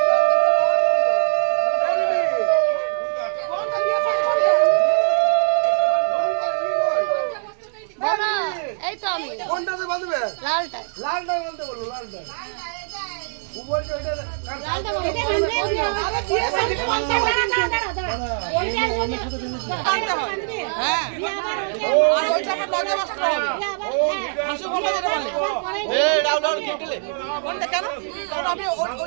বলো, এই তো আমি কোনটাতে বাঁধবে? লালটা লালটা বলতে বলো, লালটা।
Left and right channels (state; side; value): silent; left; 64 dB below the other